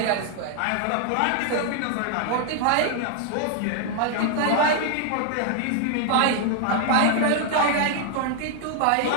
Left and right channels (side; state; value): both; different; correlation 0.00